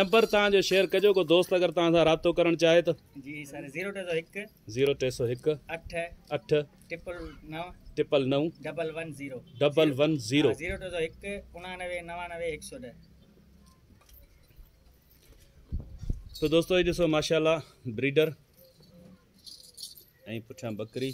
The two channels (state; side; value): identical; both; correlation 1.00